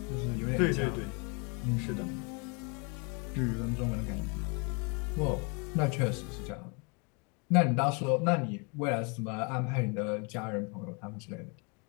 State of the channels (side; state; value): right; quieter; 33.6 dB